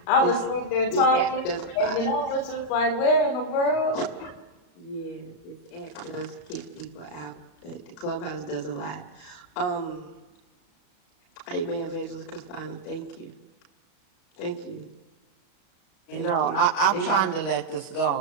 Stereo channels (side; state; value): right; late; 36 ms